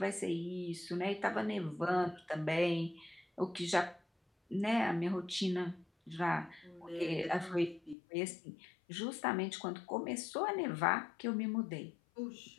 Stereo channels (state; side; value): drops out; right; at 8.0 s